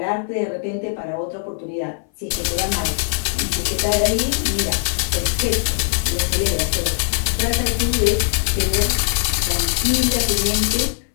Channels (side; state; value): right; silent; 60 dB below the other